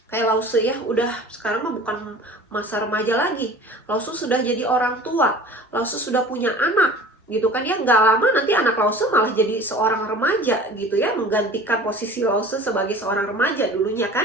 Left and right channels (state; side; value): normal; both; correlation 0.42